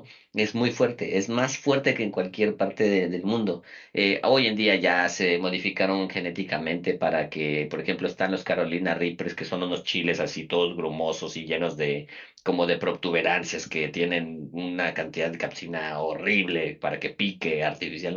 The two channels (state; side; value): identical; both; correlation 1.00